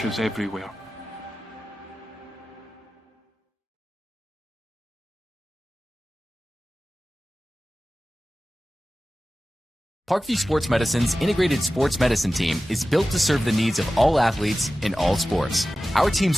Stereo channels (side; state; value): both; normal; correlation 0.95